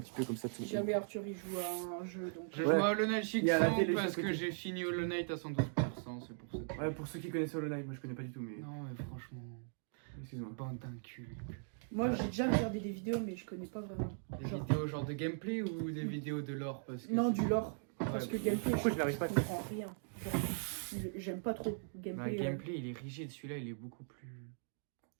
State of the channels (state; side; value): silent; left; digital silence